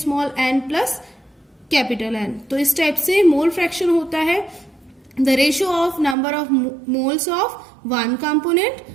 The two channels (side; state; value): left; drops out; at 6.2 s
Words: n plus capital N। तो इस टाइप से मोल फ्रैक्शन होता है the ratio of number of moles of one component